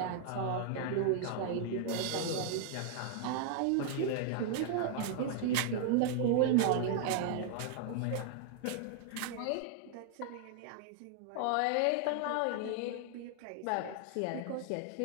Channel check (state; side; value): different; both; correlation 0.00